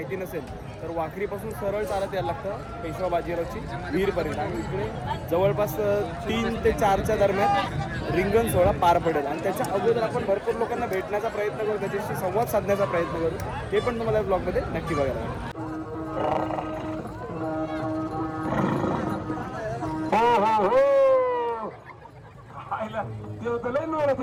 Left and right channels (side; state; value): both; identical; correlation 1.00